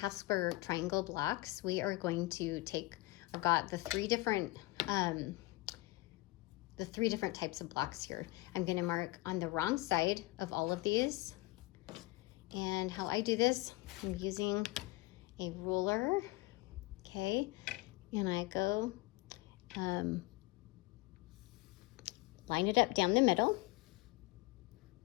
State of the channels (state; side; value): quieter; right; 21.2 dB